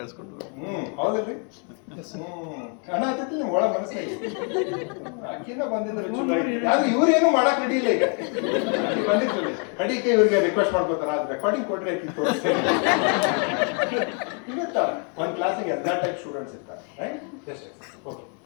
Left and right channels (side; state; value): right; quieter; 39.7 dB